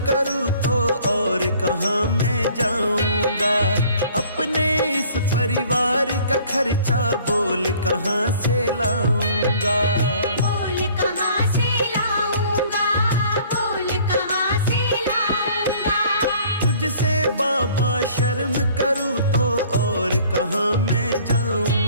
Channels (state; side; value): inverted; both; correlation -0.54